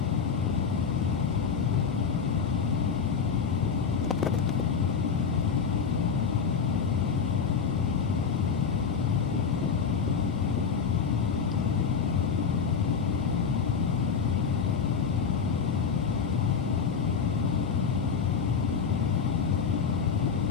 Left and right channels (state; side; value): quieter; right; 6.1 dB